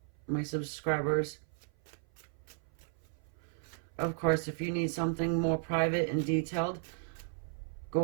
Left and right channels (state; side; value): silent; left; 55 dB below the other